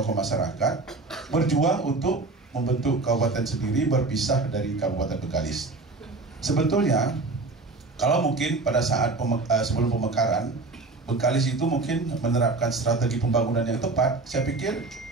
masyarakat berjuang untuk membentuk kabupaten sendiri berpisah dari Kabupaten Bengkalis. Sebetulnya kalau mungkin pada saat sebelum pemekaran Bengkalis itu mungkin menerapkan strategi pembangunan yang tepat, saya pikir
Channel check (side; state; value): left; quieter; 3.5 dB